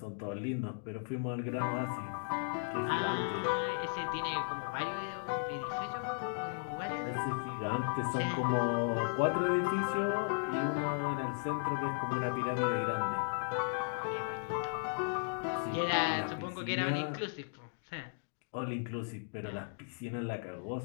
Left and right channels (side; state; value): right; silent; digital silence